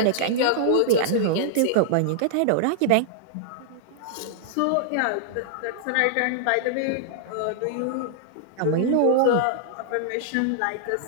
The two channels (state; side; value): different; both; correlation -0.01